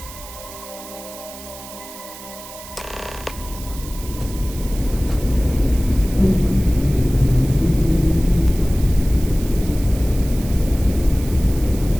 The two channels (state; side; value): noise; right; hiss, 15 dB below the sound